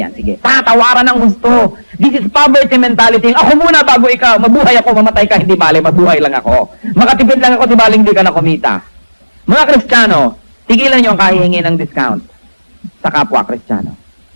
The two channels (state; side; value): inverted; both; correlation -1.00